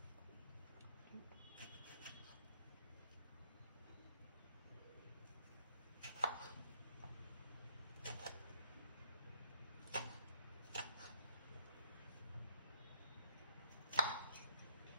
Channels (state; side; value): inverted; both; correlation -0.70